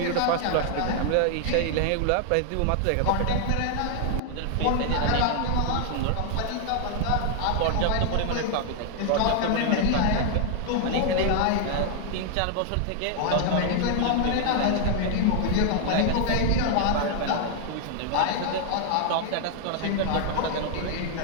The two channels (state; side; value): different; both; correlation 0.00